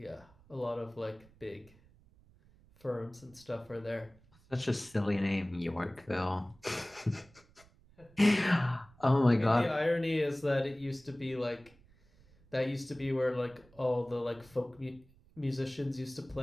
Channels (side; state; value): right; noise; rumble, 27 dB below the sound